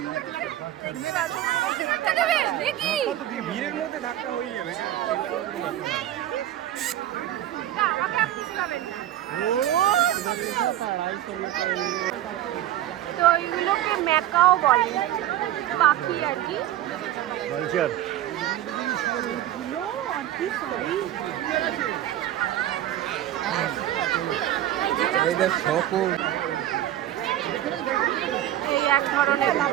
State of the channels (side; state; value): left; quieter; 12.7 dB